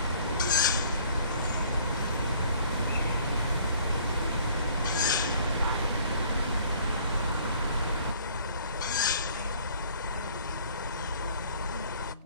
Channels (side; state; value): both; inverted; correlation -0.56